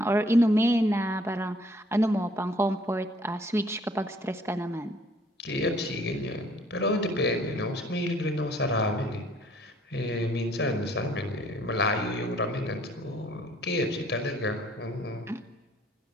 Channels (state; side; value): normal; both; correlation 0.60